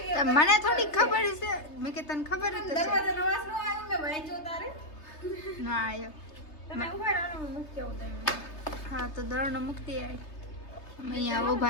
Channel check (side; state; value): right; late; 3.3 ms